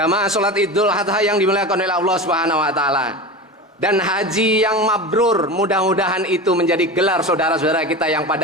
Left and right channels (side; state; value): both; normal; correlation 0.28